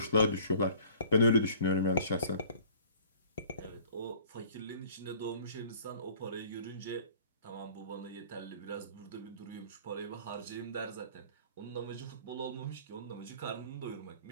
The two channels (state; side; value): inverted; both; correlation -0.50